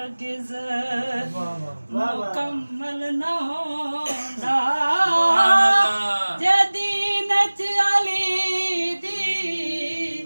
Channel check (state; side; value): inverted; both; correlation -1.00